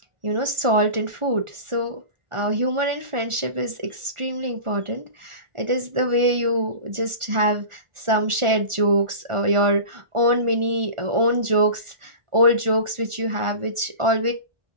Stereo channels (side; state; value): left; late; 1.4 ms